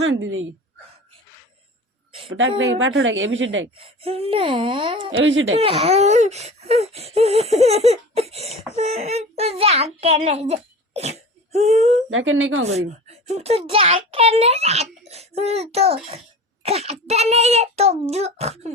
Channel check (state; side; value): normal; both; correlation 0.35